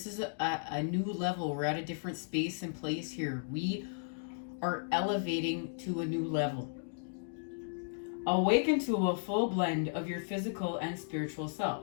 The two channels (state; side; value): silent; right; digital silence